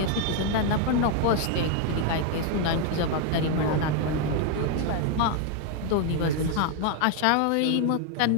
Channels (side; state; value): both; different; correlation 0.01